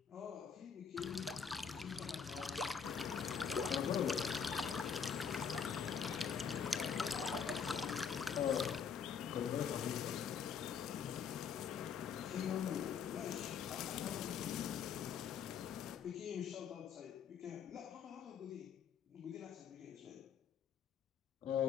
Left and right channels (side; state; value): right; quieter; 6.9 dB